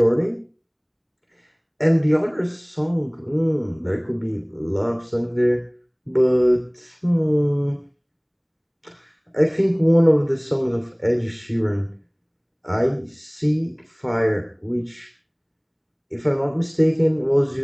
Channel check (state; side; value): identical; both; correlation 1.00